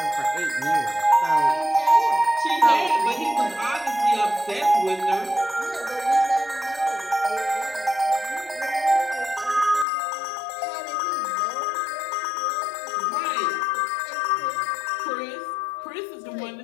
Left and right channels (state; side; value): drops out; right; at 9.9 s